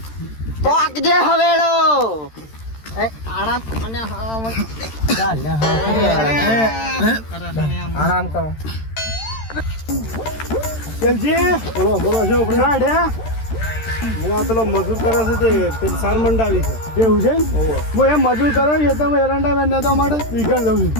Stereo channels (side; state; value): right; late; 13 ms